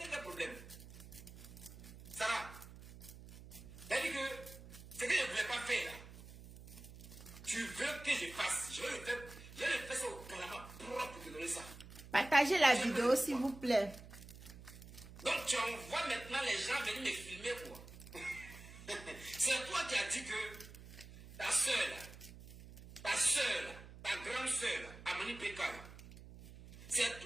pas de problème. Sarah, t'as dit que ce que je ne voulais pas faire là, tu veux que je fasse. Je vais le faire ça au Canada propre pour te donner ça. Partagez la vidéo s'il vous plaît. Donc tu envoies maintenant les gens venir me filmer quoi. C'est toi qui as dit que ta soeur là, ta grande soeur là, Amani Peka là, c'est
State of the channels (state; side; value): noise; right; hum, 16 dB below the sound